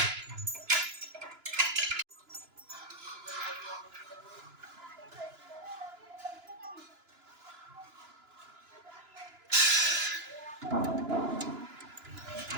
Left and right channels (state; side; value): late; left; 2.9 ms